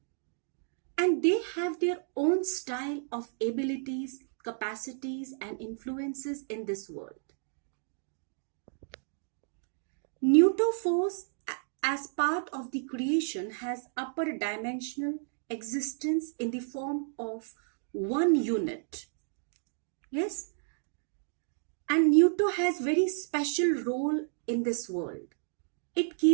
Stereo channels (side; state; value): left; silent; digital silence